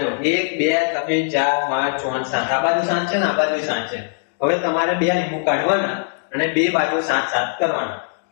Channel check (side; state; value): right; silent; 65 dB below the other